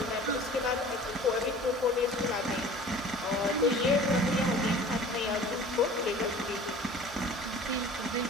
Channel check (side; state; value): both; normal; correlation 0.44